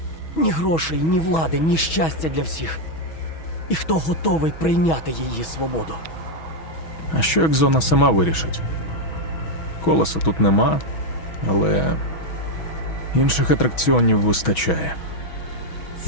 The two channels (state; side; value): late; right; 6.2 ms